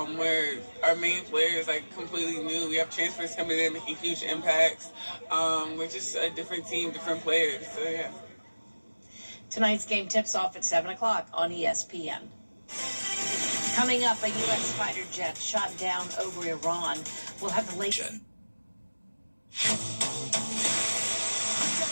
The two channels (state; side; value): inverted; both; correlation -1.00